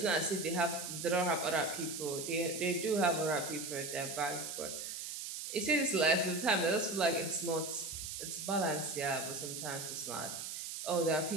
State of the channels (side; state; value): right; noise; hiss, 6 dB below the sound